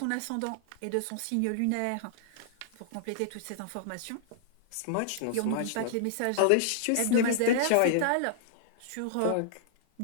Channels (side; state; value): both; different; correlation -0.01